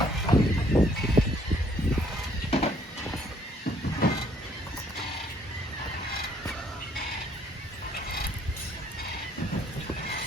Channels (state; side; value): normal; both; correlation 0.65